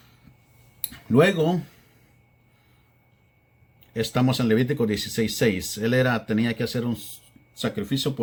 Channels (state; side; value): identical; both; correlation 1.00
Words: Luego, estamos en Levítico 16:6. Tenía que hacer un sacrificio